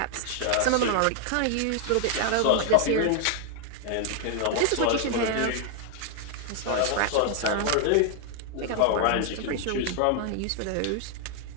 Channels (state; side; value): different; both; correlation 0.00